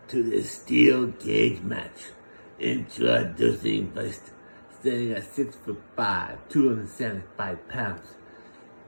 to this steel cage match. Introducing first, standing at 6'5", 275 pounds,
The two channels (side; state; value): both; inverted; correlation -1.00